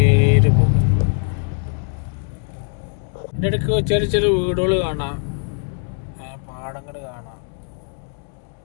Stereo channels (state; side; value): silent; right; 65 dB below the other